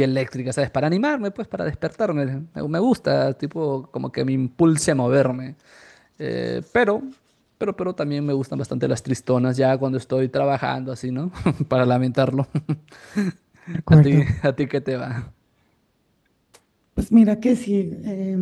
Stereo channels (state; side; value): identical; both; correlation 1.00